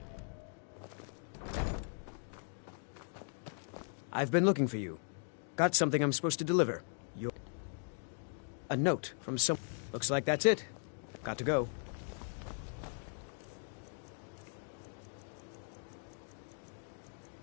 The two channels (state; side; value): silent; right; 52 dB below the other